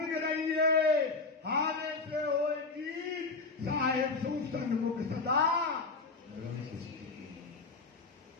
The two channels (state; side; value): quieter; right; 4.0 dB